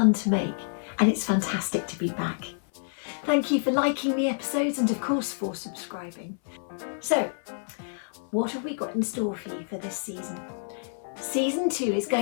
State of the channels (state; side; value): silent; right; 59 dB below the other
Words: to make and it's fantastic to be back. Thank you for liking the episodes and of course for subscribing. So, what have we got in store for you for this season? Season 2 is